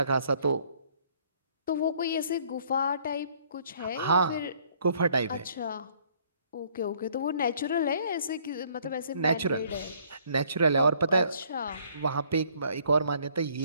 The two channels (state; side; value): inverted; both; correlation -0.62